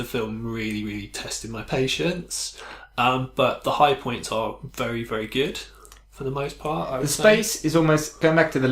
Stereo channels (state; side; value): identical; both; correlation 1.00